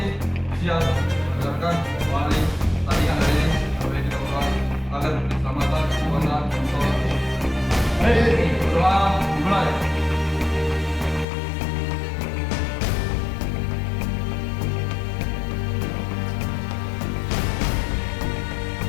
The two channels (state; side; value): drops out; right; at 11.2 s